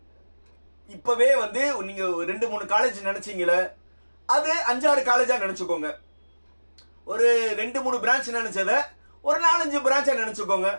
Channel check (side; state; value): both; inverted; correlation -1.00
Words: இப்பவே வந்து நீங்க 2-3 காலேஜ் நினைச்சீங்களே, அது 5-6 காலேஜா நினைச்சுக்கோங்க. ஒரு 2-3 பிரான்ச் நினைச்சத ஒரு 4-5 பிரான்ச்சா நினைச்சுக்கோங்க,